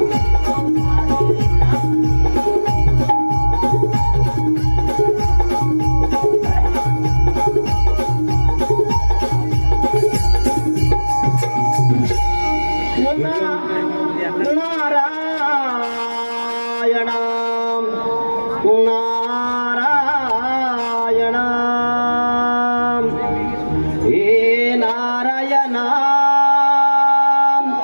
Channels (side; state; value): both; inverted; correlation -1.00